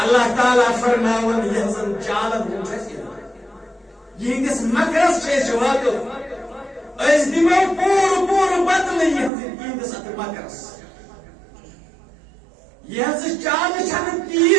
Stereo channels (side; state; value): left; drops out; at 9.3 s